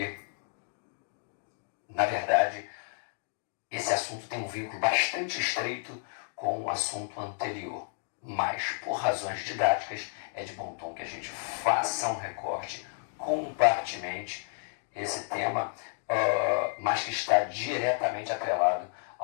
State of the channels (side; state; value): right; silent; digital silence